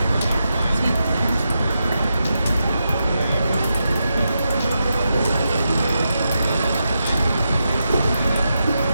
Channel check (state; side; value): inverted; both; correlation -0.86